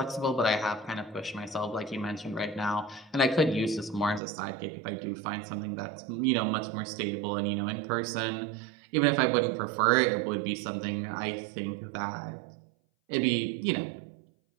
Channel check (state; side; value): drops out; left; at 4.2 s